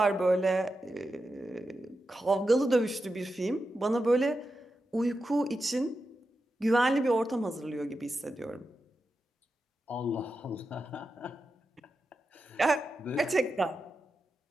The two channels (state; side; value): normal; both; correlation 0.89